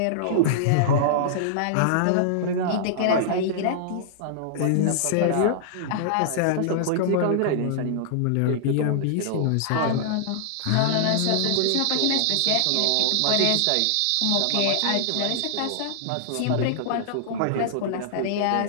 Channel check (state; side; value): different; both; correlation -0.01